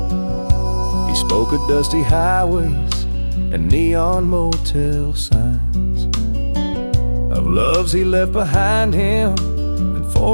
He spoke of dusty highways and neon motel signs, of loves he left behind him and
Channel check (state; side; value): inverted; both; correlation -1.00